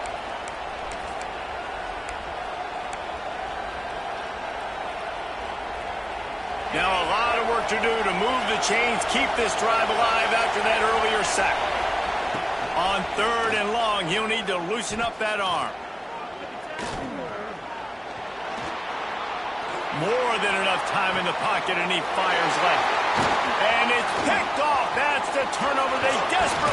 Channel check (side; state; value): both; identical; correlation 1.00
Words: Now a lot of work to do to move the chains, keep this drive alive after that earlier sack. On third and long, he'll need to loosen up that arm. More than enough time in the pocket, and he fires left. And it's picked off. That's the turnover they